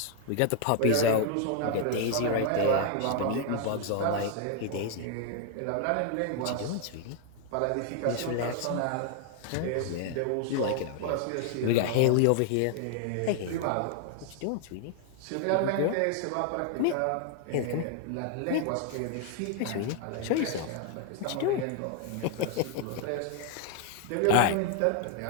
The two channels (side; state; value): both; different; correlation 0.00